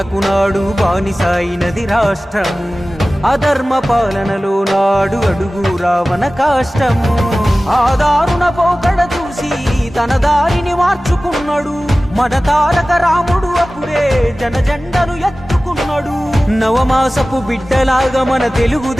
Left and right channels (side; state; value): both; normal; correlation 0.97